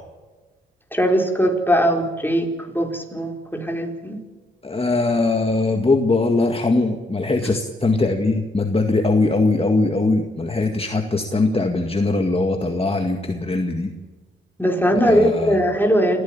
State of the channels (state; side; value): normal; both; correlation 0.76